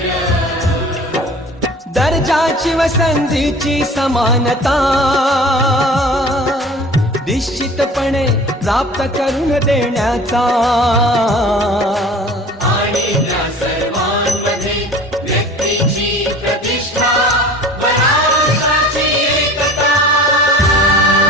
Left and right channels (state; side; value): normal; both; correlation 0.43